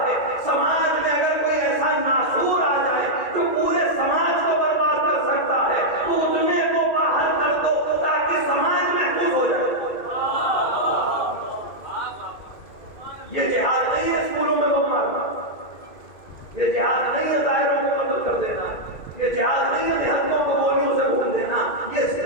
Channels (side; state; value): right; late; 2.2 ms